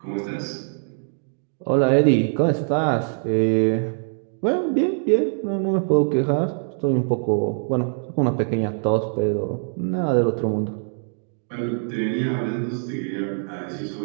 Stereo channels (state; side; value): silent; left; digital silence